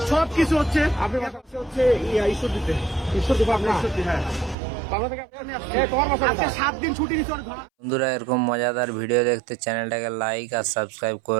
সব কিছু হচ্ছে। আপনি হচ্ছে ঈশ্বর দিতে আপনার হ্যাঁ তোমার বাসা 7 দিন ছুটি নিচ্ছে ওর ঘর। বন্ধুরা, এরকম মজাদার ভিডিও দেখতে চ্যানেলটাকে লাইক আর সাবস্ক্রাইব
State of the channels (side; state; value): left; drops out; at 4.5 s